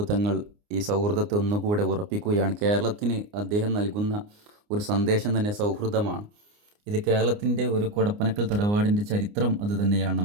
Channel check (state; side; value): late; left; 29 ms